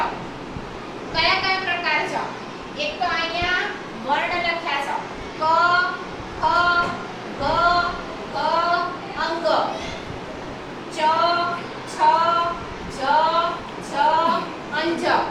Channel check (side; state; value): both; identical; correlation 1.00